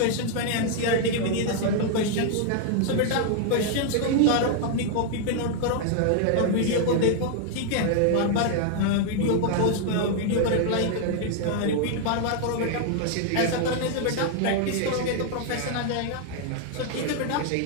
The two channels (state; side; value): different; both; correlation 0.00